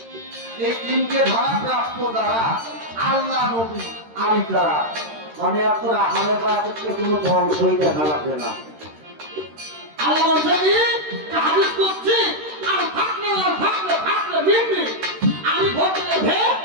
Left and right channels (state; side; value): late; left; 13 ms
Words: এই তিনটে ধারা প্রাপ্ত যারা আল্লাহ, নবী আর ইতারা। মানে আপনার আহলে বায়াতের কোনো ধ্বংসই দেখা লাগবে না। আল্লাহ বলছেন হাদিস করছি আর থাকলে বিমনি আমি ভোটে ভে